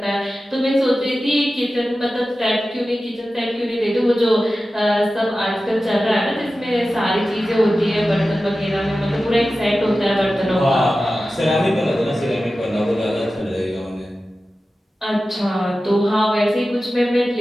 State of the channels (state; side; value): normal; both; correlation 0.94